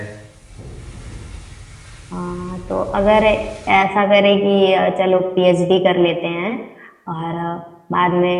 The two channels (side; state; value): both; identical; correlation 1.00